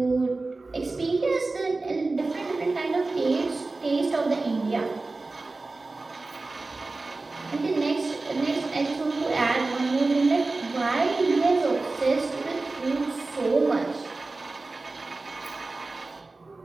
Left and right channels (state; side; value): quieter; left; 3.4 dB